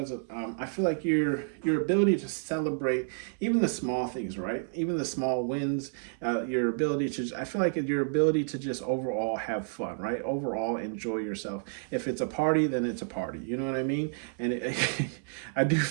of, I feel like your ability to celebrate even the small things, right? Even the small wins, your ability to, I feel like your ability to just overall have fun, right? Overall enjoy yourself. If it's a party, then it's a party. You know what I mean? And I do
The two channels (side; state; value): left; silent; 58 dB below the other